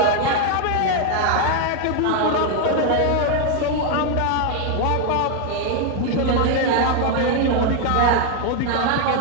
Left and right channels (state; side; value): different; both; correlation 0.01